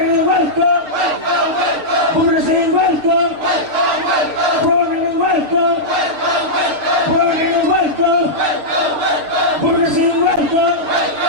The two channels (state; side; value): late; left; 6.4 ms